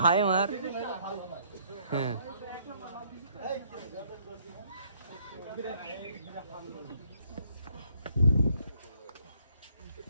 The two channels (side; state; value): both; inverted; correlation -0.67